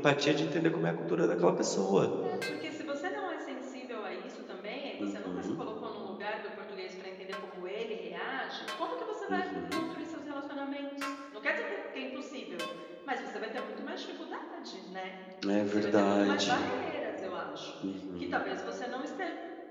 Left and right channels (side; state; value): both; identical; correlation 1.00